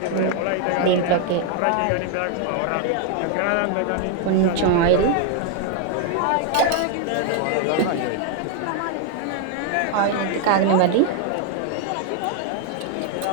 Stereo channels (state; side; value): different; both; correlation 0.01